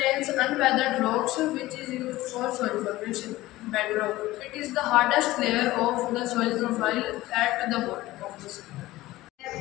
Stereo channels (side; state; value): right; quieter; 17.5 dB